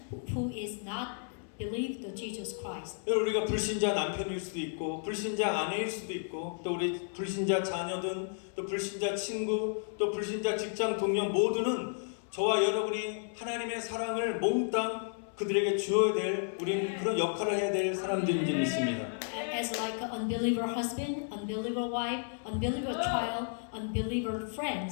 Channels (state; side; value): silent; right; 56 dB below the other